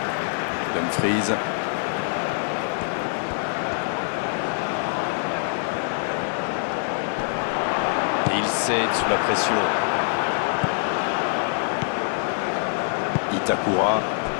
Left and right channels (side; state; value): right; silent; digital silence